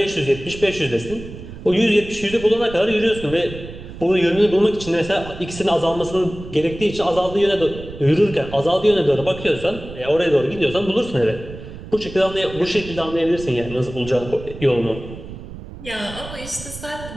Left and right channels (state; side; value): noise; right; rumble, 13 dB below the sound